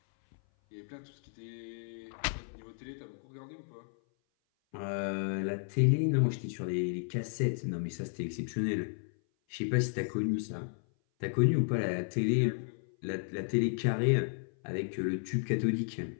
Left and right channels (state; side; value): silent; right; 56 dB below the other